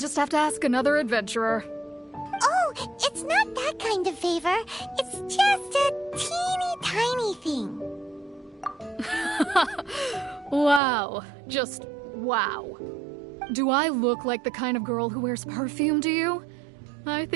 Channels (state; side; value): drops out; left; at 10.8 s